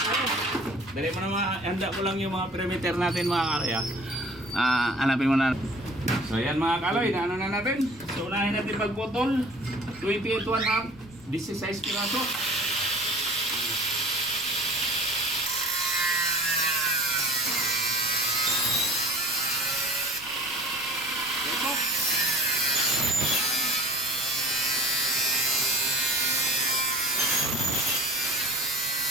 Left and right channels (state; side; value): noise; right; rumble, 23 dB below the sound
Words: Dali mo na handa ko lang yung mga perimeter natin mga kaloy. Hanapin mo na. So yan mga kaloy, na ano na natin. So unahin natin pagputol. 28 1/2, 16 piraso.